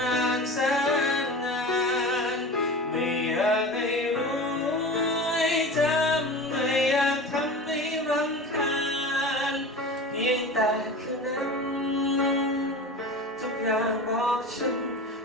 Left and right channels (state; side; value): normal; both; correlation 0.33